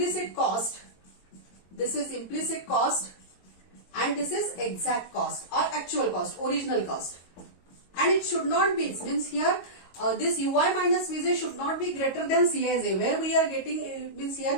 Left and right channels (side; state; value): right; late; 22 ms